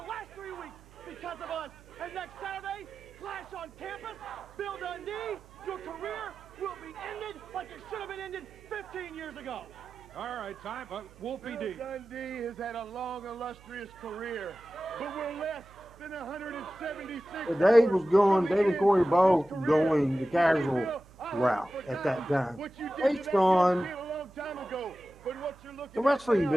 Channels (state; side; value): noise; right; hum, 23 dB below the sound